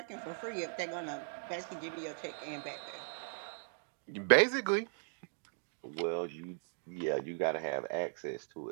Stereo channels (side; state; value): left; silent; digital silence